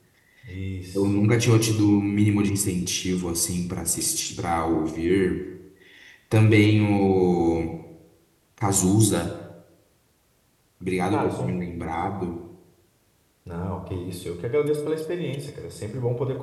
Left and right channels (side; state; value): both; identical; correlation 1.00